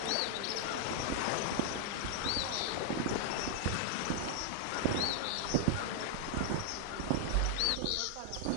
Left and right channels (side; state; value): both; different; correlation -0.01